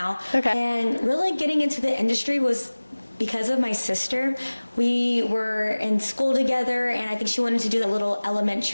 Okay. And really getting into the industry was because of my sister. We were in school together, and I think she wanted to do that little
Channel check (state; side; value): inverted; both; correlation -1.00